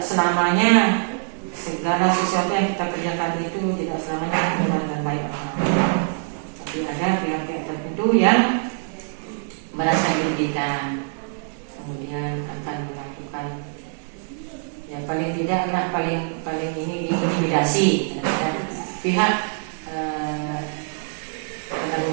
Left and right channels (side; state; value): left; silent; 63 dB below the other